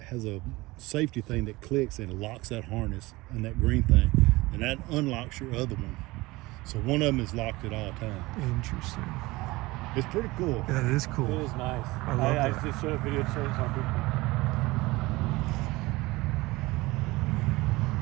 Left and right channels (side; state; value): left; quieter; 21.0 dB